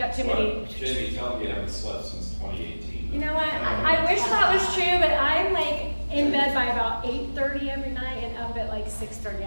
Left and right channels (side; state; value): both; inverted; correlation -1.00